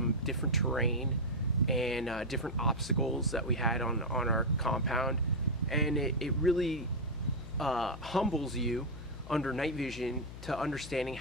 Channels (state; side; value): noise; left; hum, 13 dB below the sound